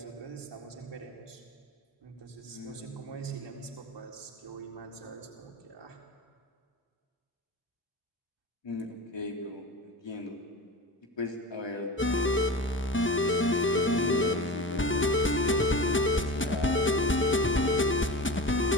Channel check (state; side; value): normal; both; correlation 0.30